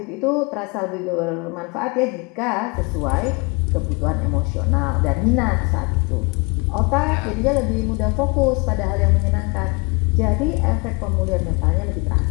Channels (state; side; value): quieter; right; 29.8 dB